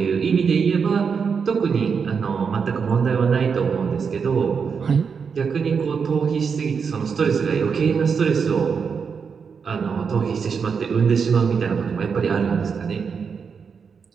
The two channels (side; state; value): left; quieter; 6.0 dB